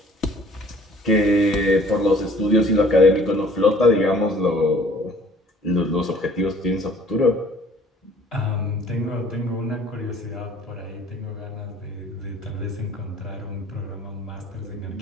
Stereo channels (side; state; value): both; normal; correlation 0.54